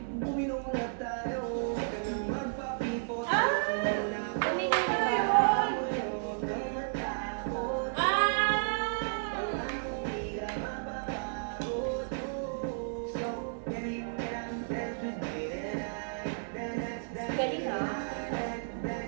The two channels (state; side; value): silent; left; digital silence